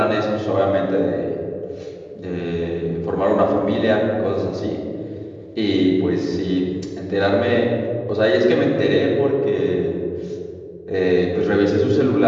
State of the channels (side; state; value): both; identical; correlation 1.00